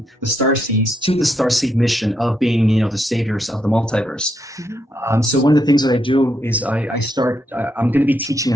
the starseeds to the starseed mission of being, the saviors of the multiverse. Mm-hmm. So one of the things that I do is I'm going to be teaching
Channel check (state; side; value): normal; both; correlation 0.79